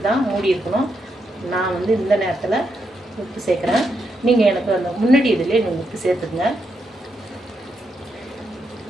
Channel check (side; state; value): both; normal; correlation 0.81